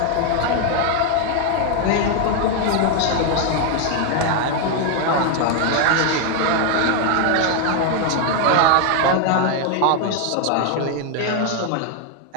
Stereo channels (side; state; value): both; different; correlation 0.00